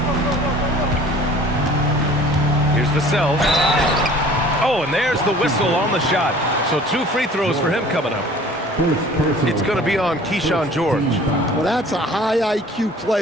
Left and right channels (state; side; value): normal; both; correlation 0.48